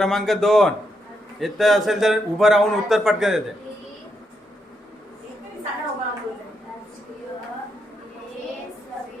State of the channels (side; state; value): both; normal; correlation 0.80